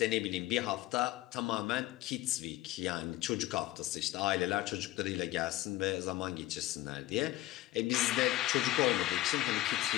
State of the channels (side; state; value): right; quieter; 16.7 dB